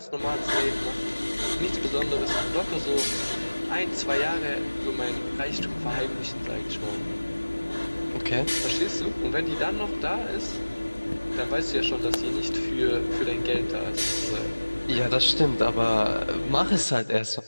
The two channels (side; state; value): both; inverted; correlation -1.00